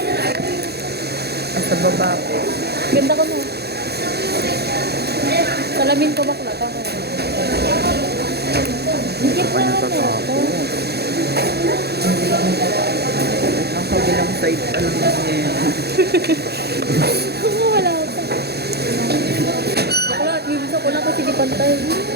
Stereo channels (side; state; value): left; late; 0.47 ms